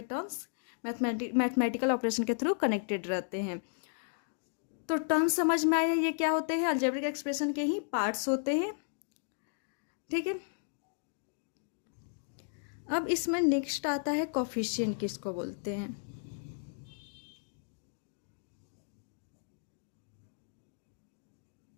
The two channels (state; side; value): silent; right; digital silence